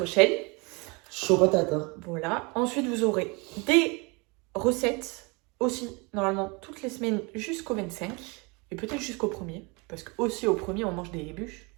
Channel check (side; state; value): left; quieter; 28.6 dB